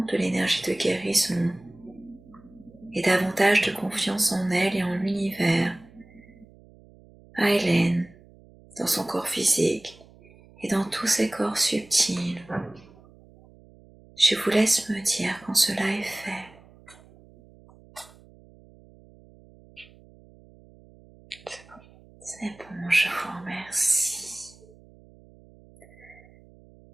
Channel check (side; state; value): right; noise; hum, 25 dB below the sound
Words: de l'énergie de guérison et davantage de confiance en elle et en l'univers à Hélène, dans son corps physique et dans tous ses corps subtils. Je vous laisse me dire quand cela est fait. C'est bon, je vous remercie.